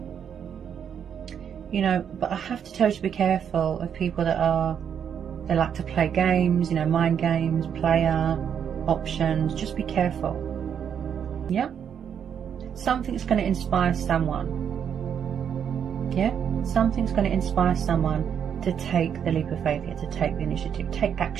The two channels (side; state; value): left; quieter; 8.1 dB